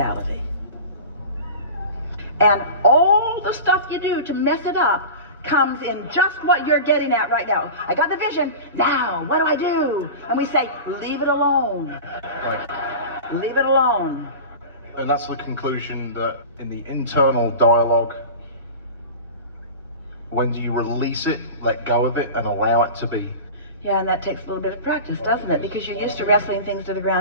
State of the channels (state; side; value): inverted; both; correlation -0.32